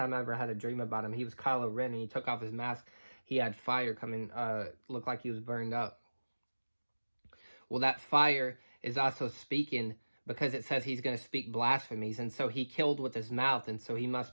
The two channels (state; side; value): inverted; both; correlation -1.00